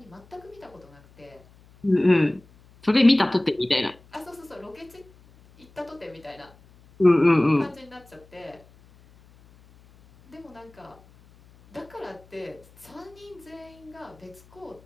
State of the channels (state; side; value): noise; left; hum, 27 dB below the sound